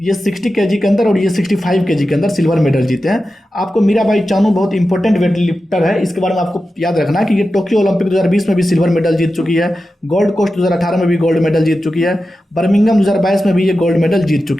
ये 60 केजी के अंदर और ये 65 केजी के अंदर सिल्वर मेडल जीते हैं। आपको मीराबाई चानू बहुत इंपॉर्टेंट वेट लिफ्टर है, इसके बारे में आपको याद रखना है कि ये टोक्यो ओलंपिक 2020 में भी सिल्वर मेडल जीत चुकी है। गोल्ड कोस्ट 2018 में भी गोल्ड मेडल जीत चुकी है। बर्मिंघम 2022 में भी ये गोल्ड मेडल जीत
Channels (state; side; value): normal; both; correlation 0.92